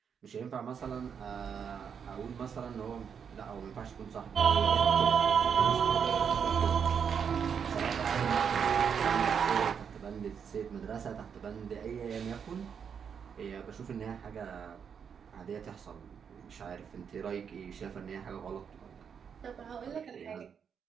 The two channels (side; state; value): left; quieter; 7.1 dB